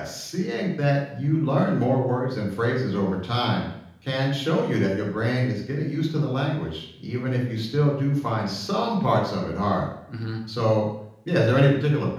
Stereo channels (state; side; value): identical; both; correlation 1.00